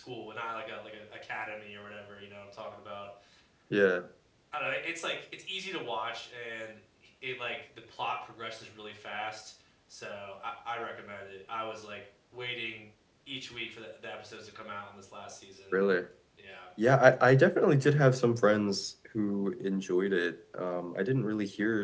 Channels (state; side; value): identical; both; correlation 1.00